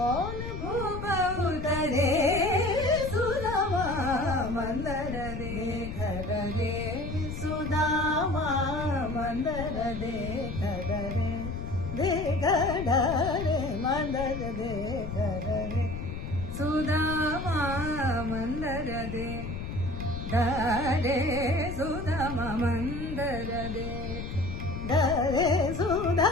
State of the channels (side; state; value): left; noise; rumble, 6 dB below the sound